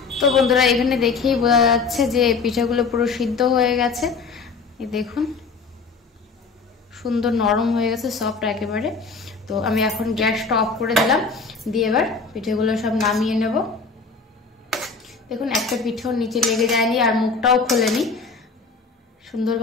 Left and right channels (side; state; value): right; quieter; 4.6 dB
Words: তো বন্ধুরা, এখানে দেখেই বোঝা যাচ্ছে যে পিঠাগুলো পুরো সিদ্ধ হয়ে গেছে। এই দেখুন, সুন্দর নরম হয়ে গেছে, সফট একেবারে। তো আমি এখন গ্যাসটা অফ করে দিলাম, দিয়ে এবার পিঠেগুলো সব নামিয়ে নেব। দেখুন, একটা পিঠেও নিচে লেগে যায়নি আর মুখটাও খোলেনি,